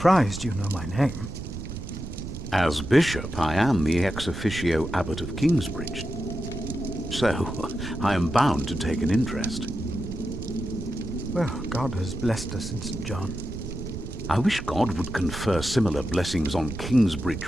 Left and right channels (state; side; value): noise; right; rumble, 8 dB below the sound